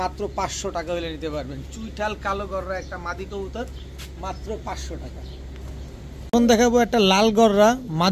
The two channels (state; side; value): identical; both; correlation 1.00